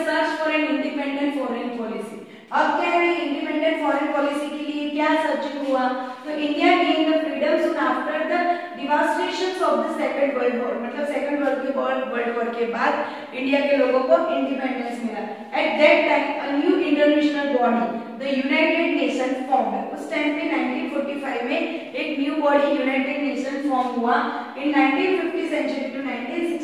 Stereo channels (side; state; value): both; identical; correlation 1.00